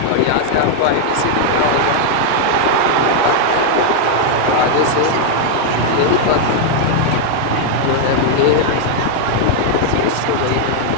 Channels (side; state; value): both; different; correlation 0.00